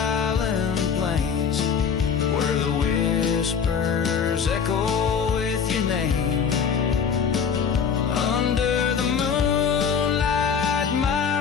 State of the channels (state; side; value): quieter; right; 6.8 dB